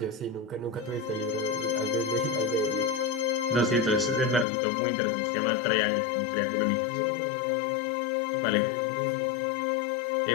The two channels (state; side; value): drops out; right; at 4.5 s